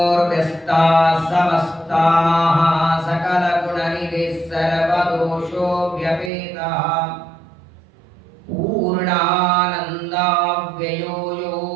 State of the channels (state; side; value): drops out; left; at 6.3 s